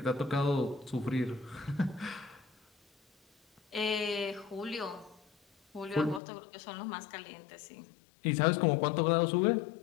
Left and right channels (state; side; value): drops out; right; at 6.2 s